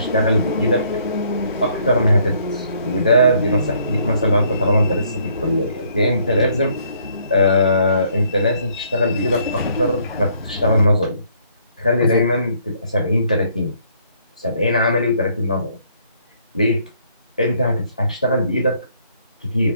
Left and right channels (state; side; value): inverted; both; correlation -0.66